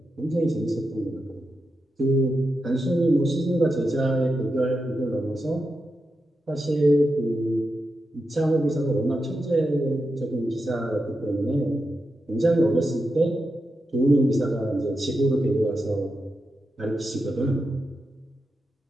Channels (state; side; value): normal; both; correlation 0.88